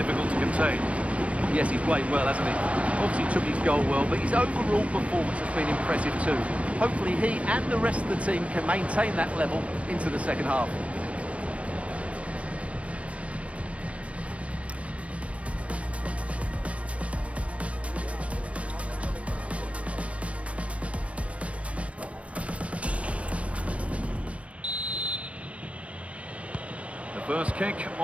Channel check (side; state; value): left; late; 0.063 ms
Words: to contain. Yes, he's played well, hasn't he? Obviously took his goal well, but his overall performance has been impressive too. Hopefully he and the rest of the team can maintain that level into the second half. The first kick